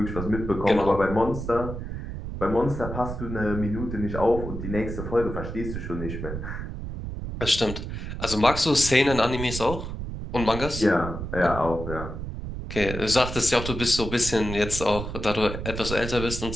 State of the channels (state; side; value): noise; right; rumble, 7 dB below the sound